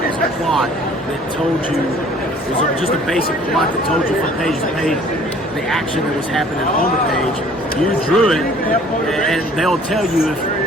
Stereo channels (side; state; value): both; normal; correlation 0.54